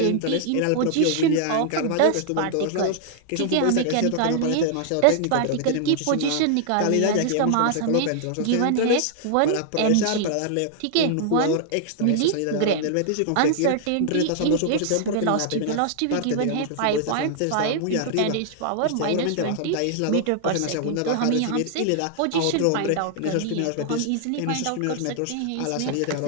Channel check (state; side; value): different; both; correlation -0.01